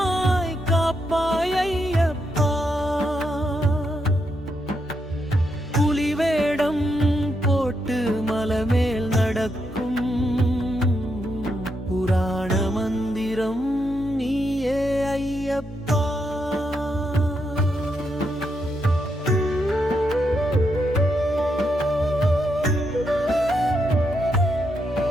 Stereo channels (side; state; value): both; normal; correlation 0.81